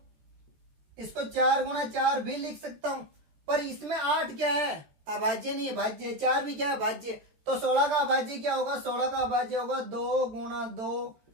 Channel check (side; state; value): left; late; 13 ms